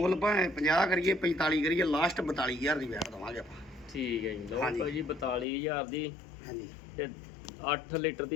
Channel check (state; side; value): drops out; right; at 5.5 s